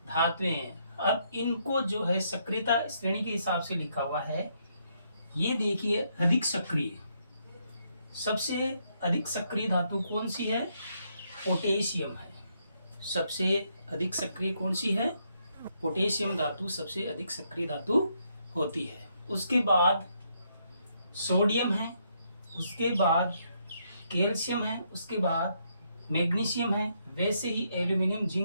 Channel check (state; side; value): inverted; both; correlation -0.75